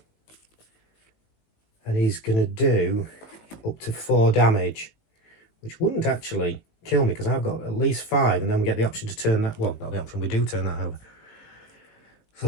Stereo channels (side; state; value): right; late; 19 ms